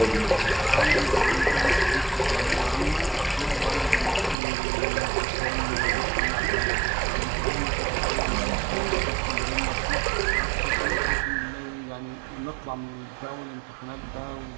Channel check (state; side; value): drops out; left; at 4.4 s